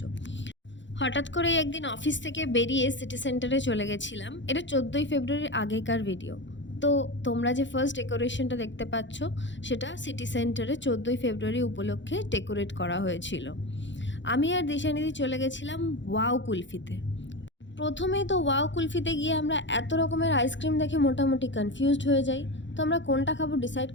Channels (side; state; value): right; late; 0.54 ms